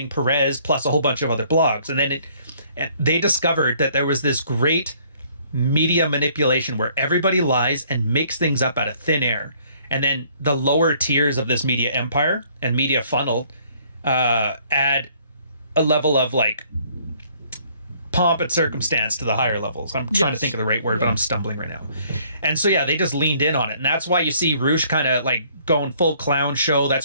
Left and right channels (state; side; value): inverted; both; correlation -0.61